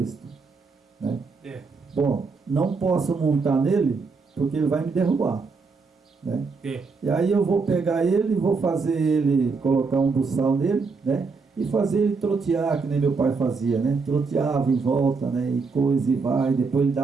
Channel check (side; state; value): left; quieter; 4.6 dB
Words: né? Bom, não posso montar nele, porque ele vai me derrubar, né? E aí eu vou pegar ele, vou fazer ele, colocar um buçal nele, né? E fazer ele trotear, que nem meu pai fazia, né? Troteava em volta, né? E coisa e vai, depois ele